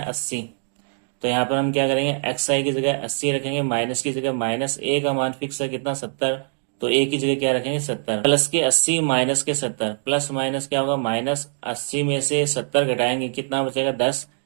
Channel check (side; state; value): left; silent; digital silence